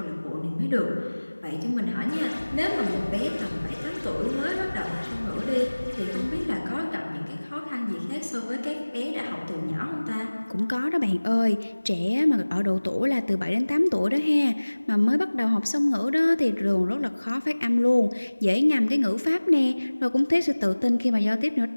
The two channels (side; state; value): both; inverted; correlation -1.00